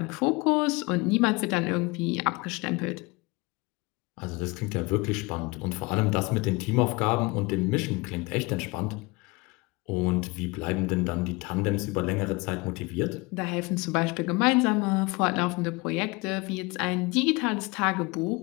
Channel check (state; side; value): quieter; right; 25.4 dB